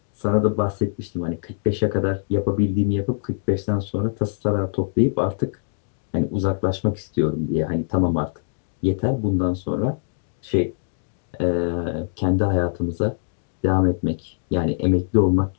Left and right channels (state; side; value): silent; right; digital silence